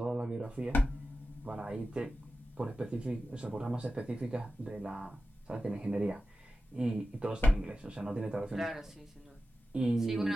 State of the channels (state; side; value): normal; both; correlation 0.93